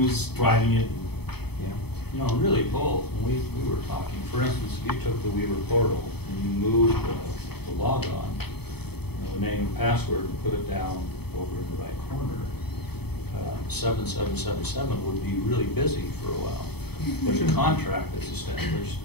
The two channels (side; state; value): right; late; 0.97 ms